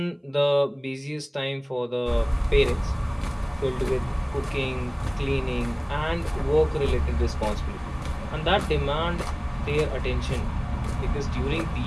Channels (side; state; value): both; identical; correlation 1.00